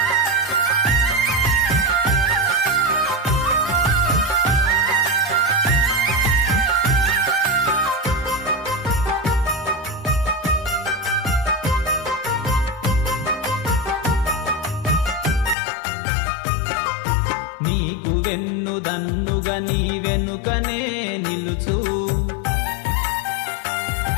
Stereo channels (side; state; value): right; drops out; at 15.6 s